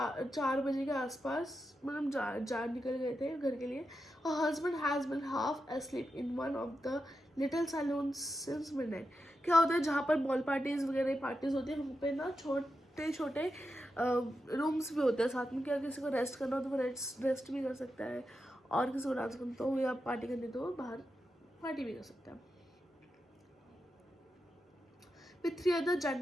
बजे के आसपास, मतलब जा निकल गए थे घर के लिए. Her husband has been half asleep in one of the little saloons since midnight. क्या होता है जहाँ पर बॉल पार्टीज वगैरह पार्टीज होती है वहाँ पे ना छोटे छोटे रूम्स भी होते हैं साथ में. क्या किसी को रेस्ट करना हो तो वो रेस्ट भी कर सकता है, और किसी को डांस करना तो या पार्टी करनी तो बाहर पार्टी भी कर सकता है. With 3 other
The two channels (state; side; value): normal; both; correlation 0.88